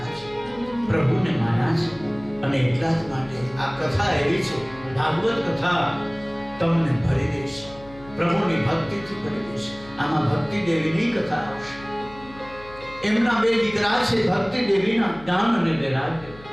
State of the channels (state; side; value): noise; left; hum, 20 dB below the sound